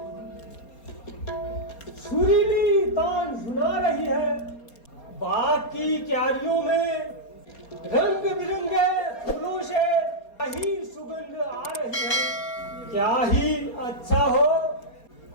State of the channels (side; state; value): right; late; 4.3 ms